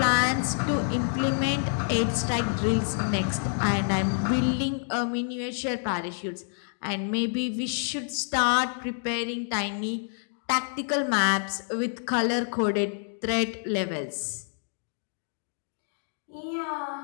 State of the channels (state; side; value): silent; right; 59 dB below the other